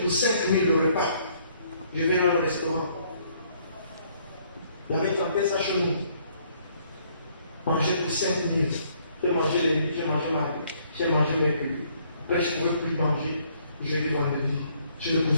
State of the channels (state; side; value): inverted; both; correlation -0.65